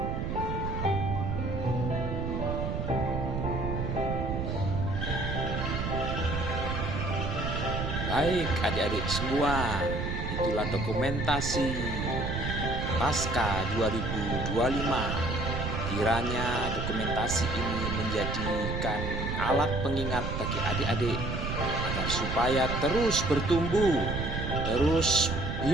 Baik adik-adik semua, itulah dokumentasi Paskah 2025. Kiranya dokumentasi ini menjadikan alat pengingat bagi adik-adik agar supaya terus bertumbuh, terus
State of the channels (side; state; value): right; noise; rumble, 2 dB below the sound